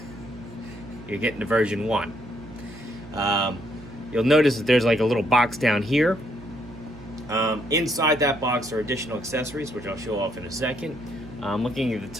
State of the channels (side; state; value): right; noise; hum, 17 dB below the sound